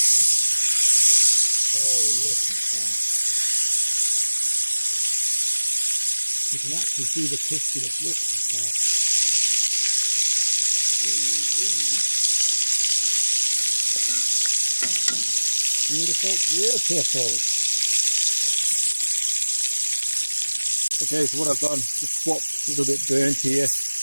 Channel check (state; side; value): inverted; both; correlation -1.00